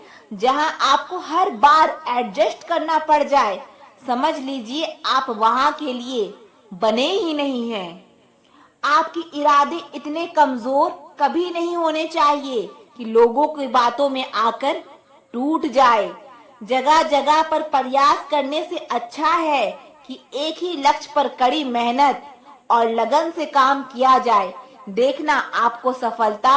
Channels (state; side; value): identical; both; correlation 1.00